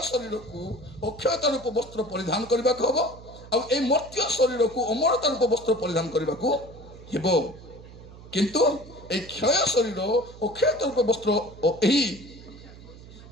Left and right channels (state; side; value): noise; right; hum, 18 dB below the sound